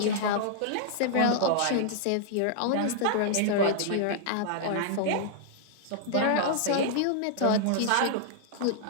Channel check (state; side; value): different; both; correlation -0.01